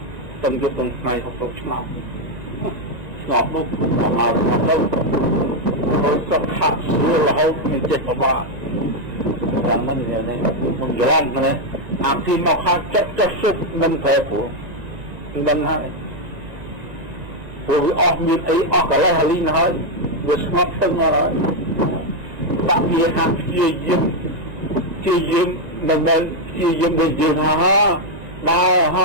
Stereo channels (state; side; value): late; left; 1.9 ms